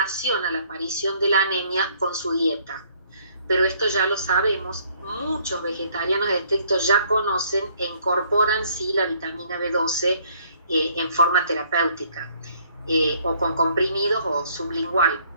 la aparición de la anemia con su dieta. Pero esto ya lo sabemos, muchos vegetarianos estrictos ya conocen e incorporan sí la vitamina B12 en forma terapéutica, o con comprimidos o sublingual.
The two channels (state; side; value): inverted; both; correlation -0.63